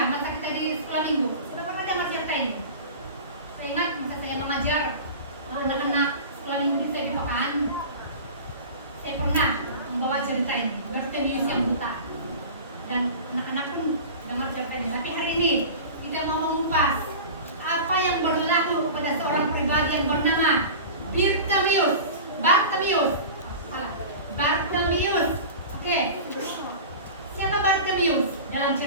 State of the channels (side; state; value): both; inverted; correlation -0.34